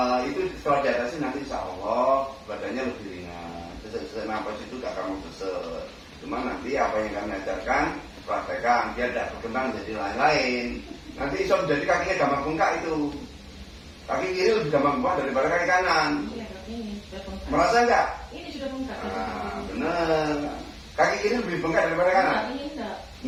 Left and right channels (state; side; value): identical; both; correlation 1.00